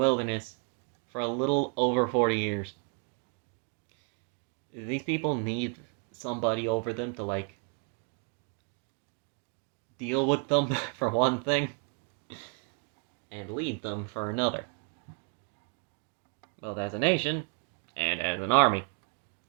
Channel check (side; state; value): left; quieter; 34.9 dB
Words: for a little over 40 years. These people need somebody over them to, deal with them, for one thing, and lead them for another. Both as a nation and as an army,